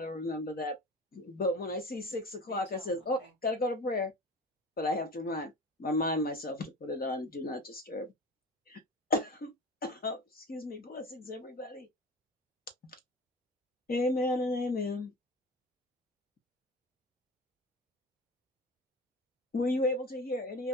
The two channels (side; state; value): both; normal; correlation 0.34